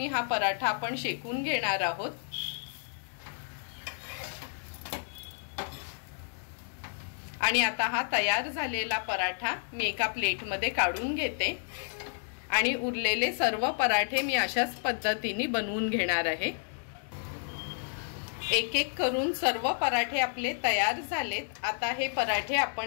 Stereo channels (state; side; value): silent; right; digital silence